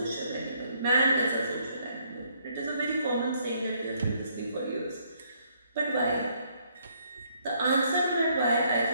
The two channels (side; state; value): both; inverted; correlation -0.69